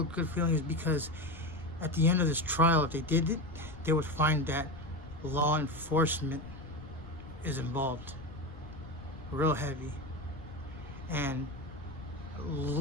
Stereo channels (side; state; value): left; noise; rumble, 15 dB below the sound